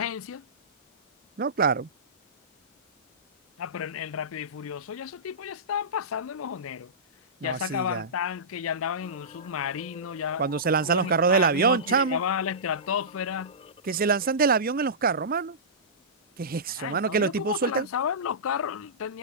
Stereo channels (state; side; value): normal; both; correlation -0.20